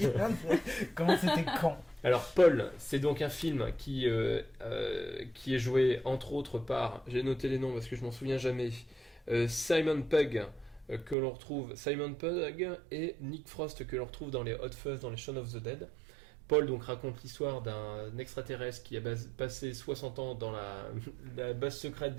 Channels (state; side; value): drops out; left; at 11.2 s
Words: comment c'était con. Alors Paul, c'est donc un film qui est joué entre autres par, j'ai noté les noms parce que je m'en souviens jamais, Simon Pegg que l'on retrouve, Simon Pegg et Nick Frost que l'on retrouve dans les Hot Fuzz, dans les Shaun of the Dead. Paul donc raconte l'histoire d'un extraterrestre qui a passé 60 ans dans la base secrète